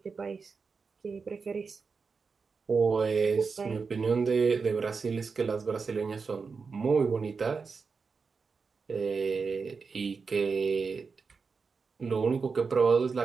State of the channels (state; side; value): quieter; left; 5.0 dB